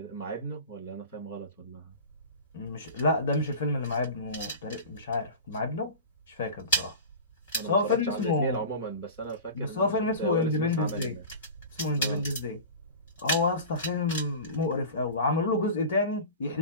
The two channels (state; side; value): inverted; both; correlation -0.34